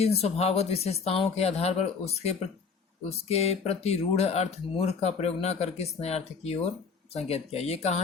स्वभावगत विशेषताओं के आधार पर उसके प्रति रूढ़ अर्थ मूर्ख का प्रयोग न करके इस नए अर्थ की ओर संकेत किया? ये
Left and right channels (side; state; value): right; quieter; 5.4 dB